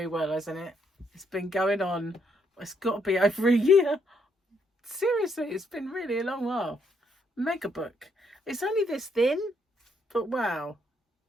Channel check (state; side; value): normal; both; correlation 0.73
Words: well, hasn't it? It's been going on. It's got to be over a year. Seriously, it's been really a long while. Mega book. It's only this thin, but wow.